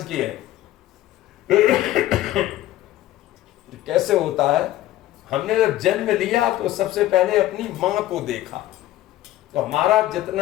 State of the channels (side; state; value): right; quieter; 14.7 dB